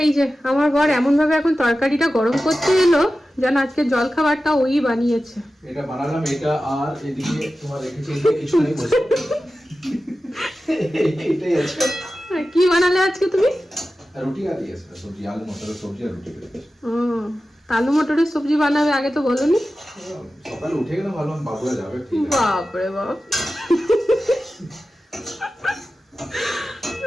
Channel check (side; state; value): both; normal; correlation 0.94